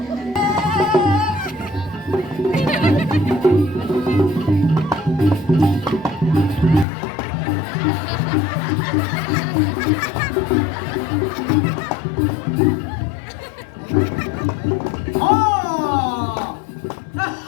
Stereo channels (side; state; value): right; drops out; at 6.9 s